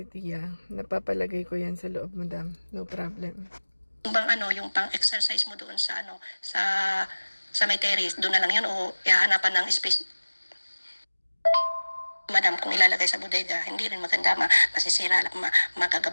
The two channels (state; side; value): inverted; both; correlation -1.00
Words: Tia, napapalagay ko yan sa loob, madam. No problem. Yung yung pang-exercise mo doon sa sa may terrace, doon na lang yun o ihahanapan ng space. Madam, kung ilalagay sa bodega, hindi rin maganda, masisira,